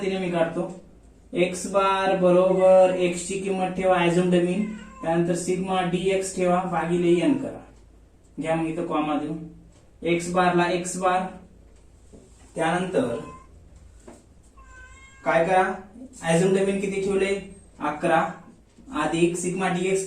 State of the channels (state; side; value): identical; both; correlation 1.00